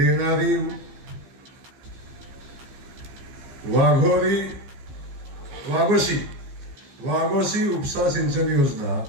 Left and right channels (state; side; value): late; left; 15 ms